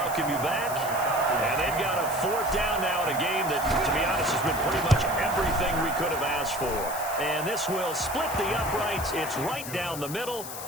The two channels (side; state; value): left; noise; hiss, 9 dB below the sound